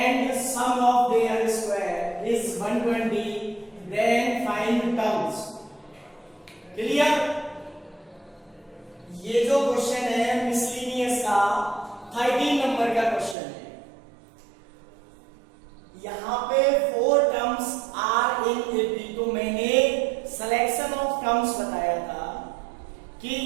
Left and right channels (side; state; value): left; drops out; at 13.4 s